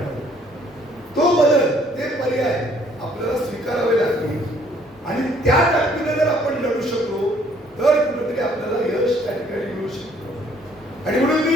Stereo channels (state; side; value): normal; both; correlation 0.62